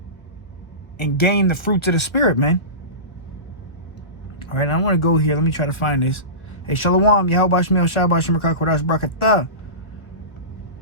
and gain the fruits of the spirit, man. All right, I want to go here. Let me try to find this. Hey, Shalom, Yahweh Bashmi Hawashai Bashmi Kodash Barakatah.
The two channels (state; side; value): late; right; 1.0 ms